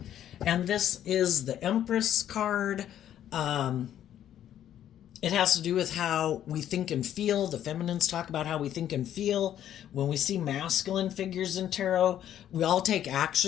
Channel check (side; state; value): right; quieter; 10.9 dB